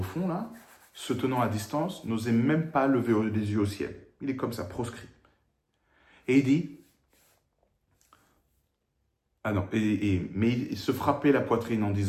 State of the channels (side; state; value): both; identical; correlation 1.00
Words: fond là, se tenant à distance, n'osait même pas lever les yeux au ciel. Il est comme ça, proscrit. Et il dit, mais il se frappait la poitrine en